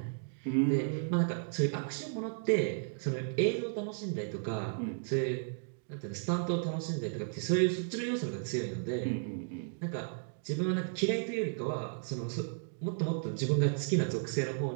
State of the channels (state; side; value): silent; left; digital silence